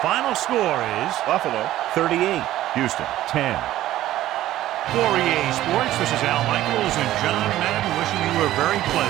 score is Buffalo 38, Houston 10. For EA Sports, this is Al Michaels and John Madden wishing you a very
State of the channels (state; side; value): quieter; left; 14.2 dB